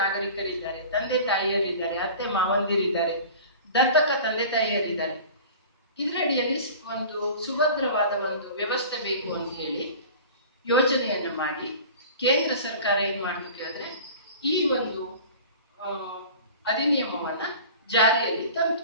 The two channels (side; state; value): both; inverted; correlation -0.40